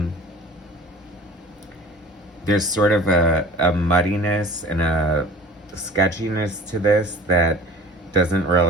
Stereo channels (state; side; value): normal; both; correlation 0.44